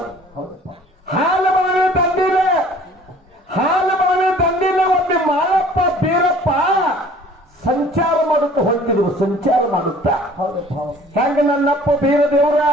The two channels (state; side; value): normal; both; correlation 0.51